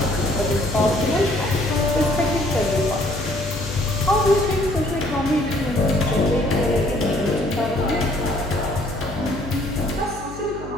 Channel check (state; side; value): noise; left; hum, 13 dB below the sound